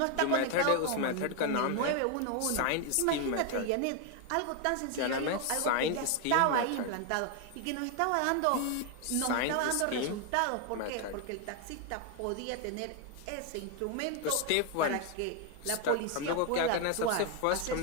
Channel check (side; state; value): both; different; correlation 0.01